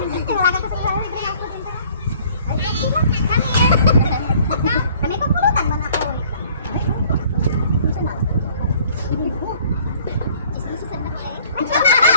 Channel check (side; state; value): both; inverted; correlation -0.56